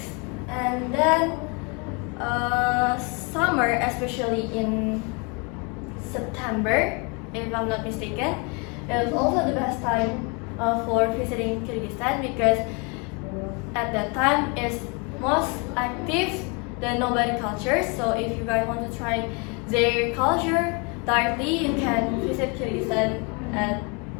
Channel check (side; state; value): right; quieter; 32.4 dB